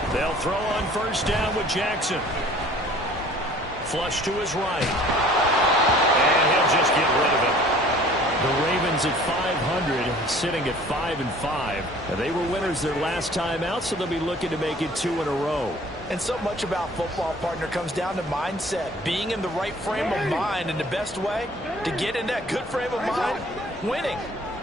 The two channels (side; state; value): both; normal; correlation 0.51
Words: They'll throw on first down with Jackson. Flush to his right. And he'll just get rid of it. The Ravens at 500, sitting at 5-5. Now, they were winners their last time out, so they'll be looking to make it 2 in a row. And so much about football, partner, comes down to mindset. Being in the right frame of mind, and the best way to get in that good frame of mind, winning.